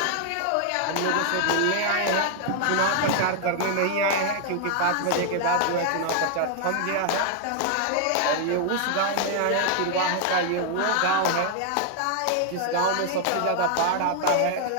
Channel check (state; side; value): different; both; correlation 0.00